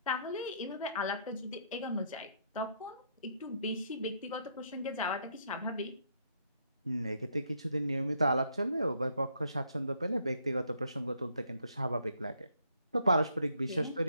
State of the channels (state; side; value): inverted; both; correlation -0.71